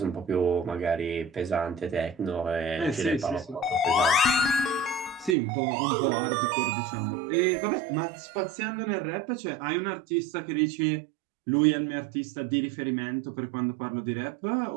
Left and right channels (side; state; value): left; drops out; at 5.4 s